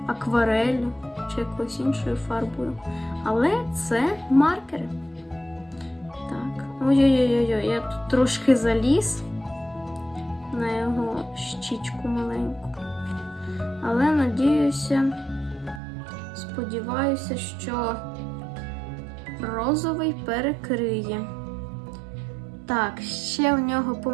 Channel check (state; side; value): drops out; left; at 15.8 s